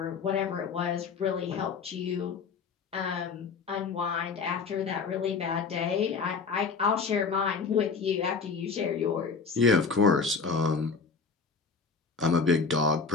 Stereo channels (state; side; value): quieter; right; 5.1 dB